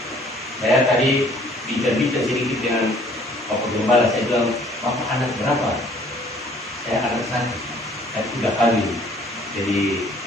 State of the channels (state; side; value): normal; both; correlation 0.57